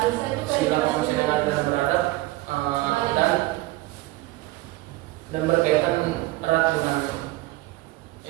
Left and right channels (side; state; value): left; quieter; 18.9 dB